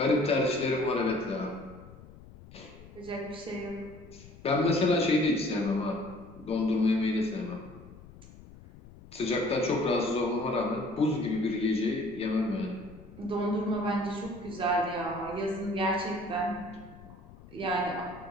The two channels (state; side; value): noise; left; rumble, 19 dB below the sound